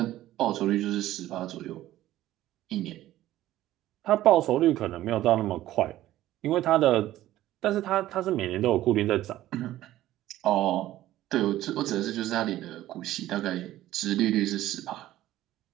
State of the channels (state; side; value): quieter; left; 14.4 dB